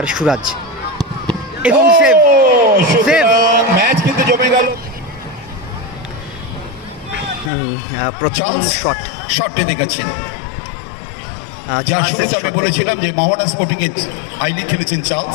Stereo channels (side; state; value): right; drops out; at 7.5 s